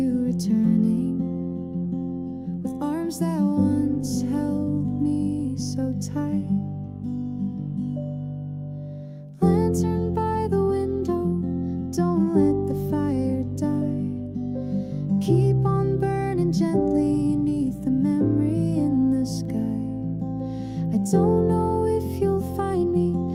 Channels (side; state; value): both; identical; correlation 1.00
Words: returning, with arms that once held me so tight. Lantern by the window, don't let the fire die. Keep on burning gently beneath the memory in the sky. I don't know if you'll find me,